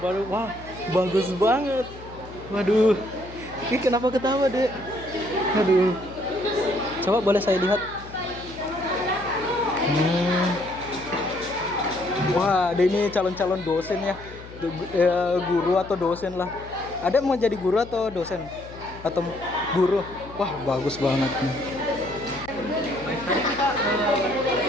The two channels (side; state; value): left; noise; hum, 17 dB below the sound